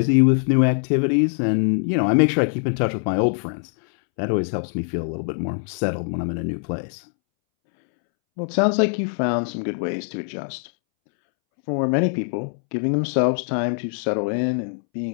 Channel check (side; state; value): right; silent; 64 dB below the other